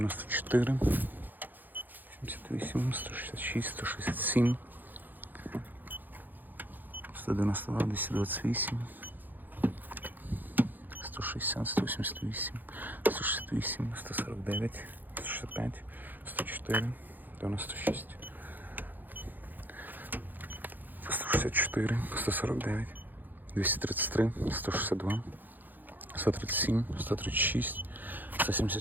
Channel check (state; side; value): late; left; 0.087 ms